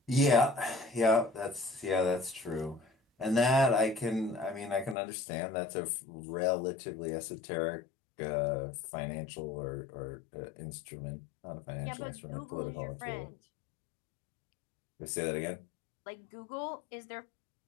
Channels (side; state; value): right; drops out; at 5.0 s